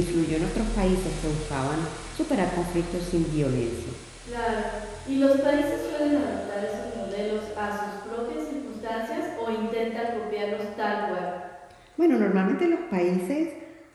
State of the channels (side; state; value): both; identical; correlation 1.00